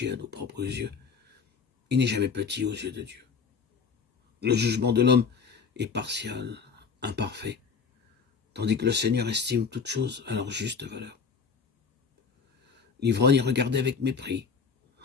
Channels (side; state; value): right; quieter; 5.7 dB